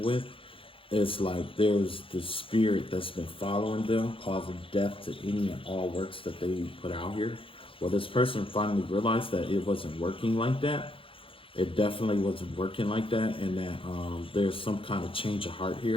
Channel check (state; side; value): late; right; 0.26 ms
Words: with, it's like there's this spirit that's been following them, causing death to any and all works that they put out here. Well, this person finally realized that it wasn't working like that. It definitely wasn't working like that, and that there's some kind of change of heart